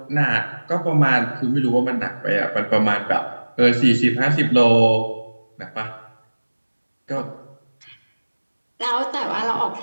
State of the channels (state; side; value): inverted; both; correlation -1.00